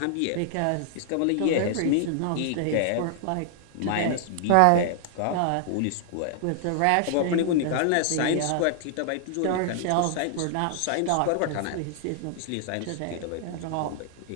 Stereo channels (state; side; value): different; both; correlation 0.00